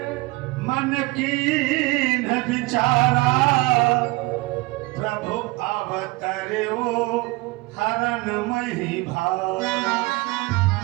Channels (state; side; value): quieter; left; 22.6 dB